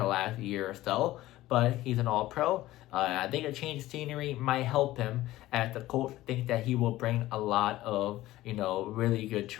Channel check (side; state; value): right; quieter; 16.2 dB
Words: last year or so, but he's an all-pro. I think a change of scenery might help him, as the Colts think that he will bring a lot of, really good